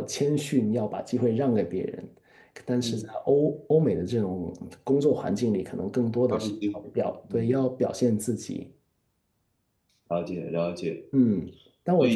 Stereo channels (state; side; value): identical; both; correlation 1.00